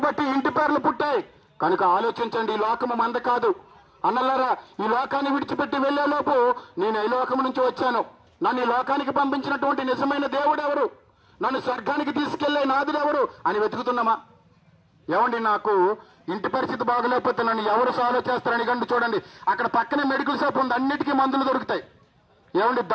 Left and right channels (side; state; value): both; identical; correlation 1.00